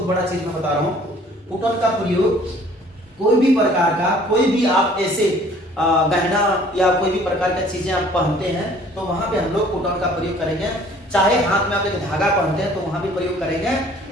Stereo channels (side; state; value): both; normal; correlation 0.54